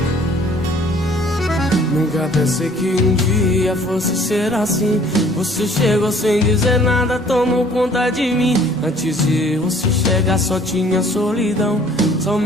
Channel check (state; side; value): normal; both; correlation 0.56